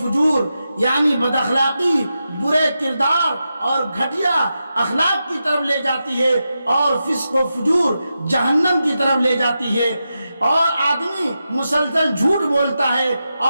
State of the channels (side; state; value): both; inverted; correlation -0.89